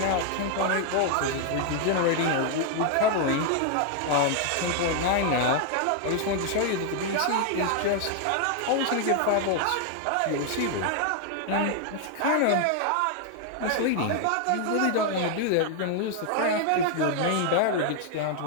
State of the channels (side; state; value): both; different; correlation 0.00